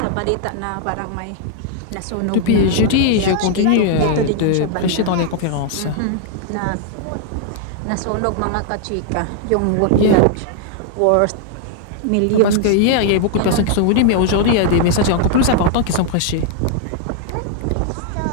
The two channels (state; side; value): different; both; correlation 0.00